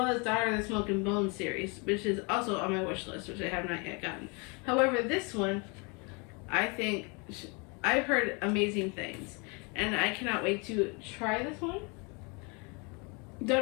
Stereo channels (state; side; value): quieter; right; 31.6 dB